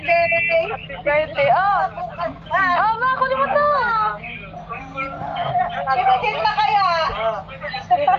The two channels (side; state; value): both; identical; correlation 1.00